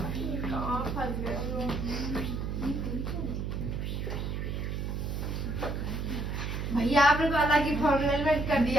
कहाँ फंस गए हो? भैया आपने तो अलग ही फॉर्मूला कर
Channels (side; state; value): right; noise; hum, 3 dB below the sound